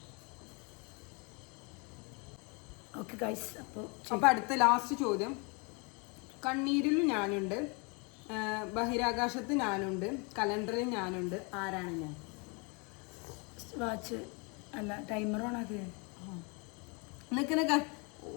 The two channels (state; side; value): quieter; right; 32.0 dB